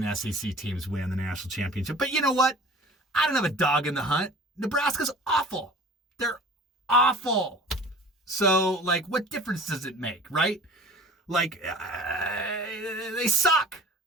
SEC teams win the national championship. But you know what? I don't have a dog in the hunt. Nebraska's awful. They're awful. So, like, what difference does it make, right? Like, they suck.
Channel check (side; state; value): both; normal; correlation 0.44